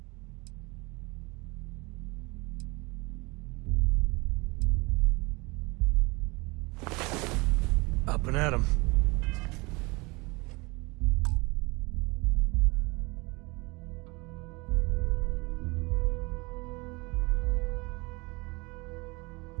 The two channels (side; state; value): left; quieter; 25.9 dB